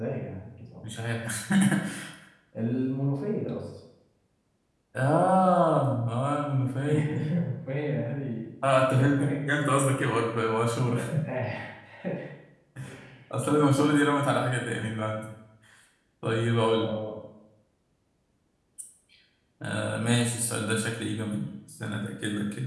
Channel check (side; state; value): both; identical; correlation 1.00